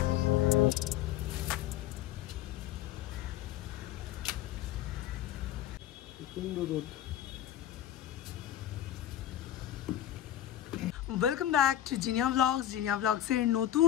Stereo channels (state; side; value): quieter; right; 12.0 dB